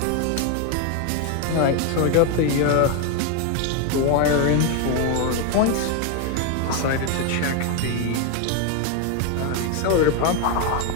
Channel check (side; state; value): both; different; correlation 0.01